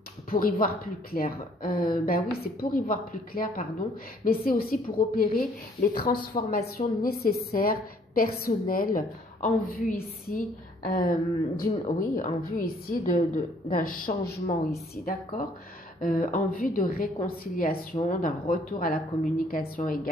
pour y voir plus clair? Ben oui, c'est pour y voir plus clair, pardon, mais c'est aussi pour opérer les transformations nécessaires, personnelles, en vue ici en vue ici d'un changement ici, d'accord? En vue de réconciliation, d'un retour à la communication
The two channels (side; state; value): both; normal; correlation 0.61